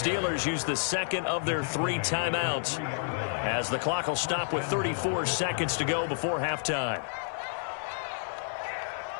use the second of their 3 timeouts, as the clock will stop with 34 seconds to go before halftime.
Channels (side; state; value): right; silent; 58 dB below the other